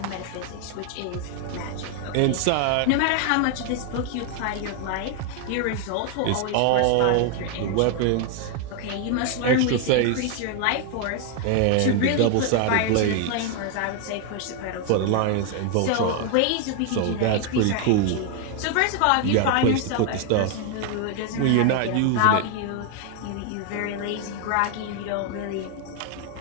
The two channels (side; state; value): both; different; correlation 0.00